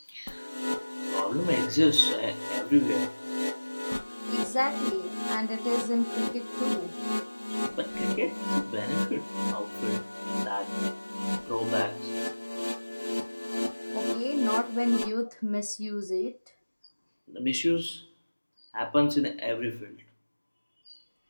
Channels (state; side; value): inverted; both; correlation -1.00